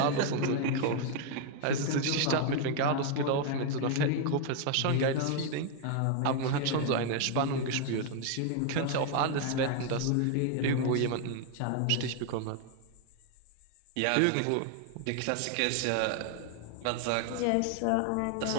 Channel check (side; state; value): both; different; correlation 0.01